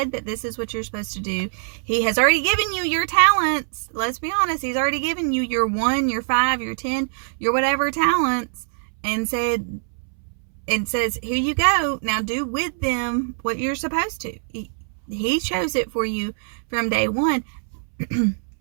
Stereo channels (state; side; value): silent; left; 63 dB below the other